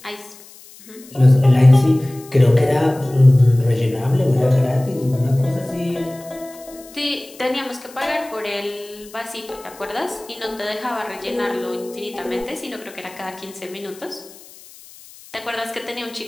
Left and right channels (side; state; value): left; noise; hiss, 21 dB below the sound